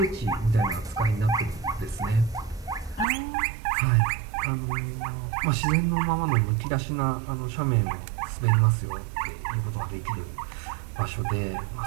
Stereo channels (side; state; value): left; drops out; at 3.1 s